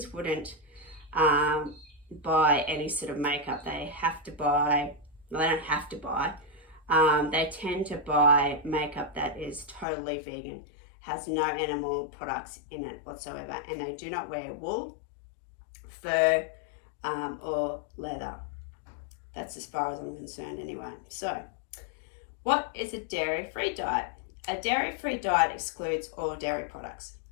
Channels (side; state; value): right; drops out; at 9.9 s